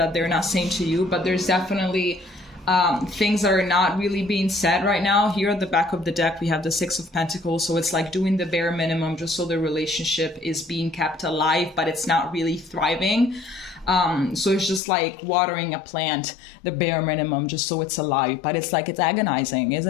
they're not saying to you, but there's definitely things that are not really being said right now. Here at the back of the deck, we have the Six of Pentacles, so it's like doing the bare minimum just so the relationship is being kept alive, but it's not really thriving. So it's just like watering a plant, the bare minimum, just so it's alive, but it's like, it's agonizing,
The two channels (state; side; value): drops out; right; at 14.8 s